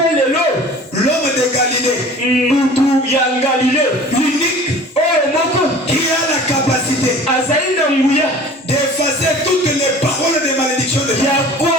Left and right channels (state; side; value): normal; both; correlation 0.44